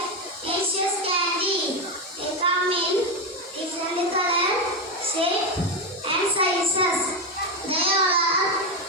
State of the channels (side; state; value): both; normal; correlation 0.10